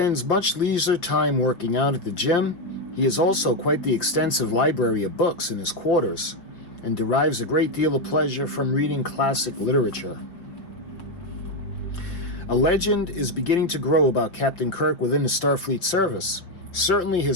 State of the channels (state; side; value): late; right; 5.1 ms